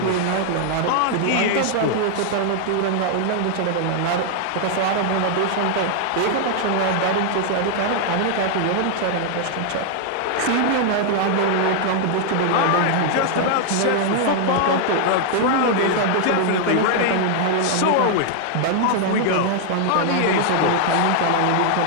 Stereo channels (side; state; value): both; different; correlation 0.00